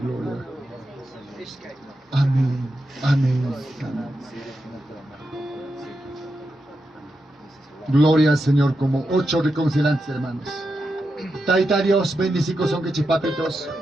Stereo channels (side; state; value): both; normal; correlation 0.87